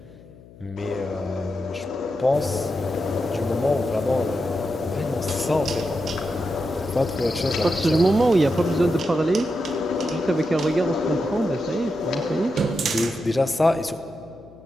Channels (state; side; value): noise; left; hum, 22 dB below the sound